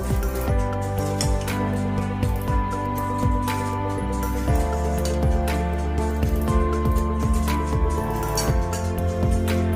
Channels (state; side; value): identical; both; correlation 1.00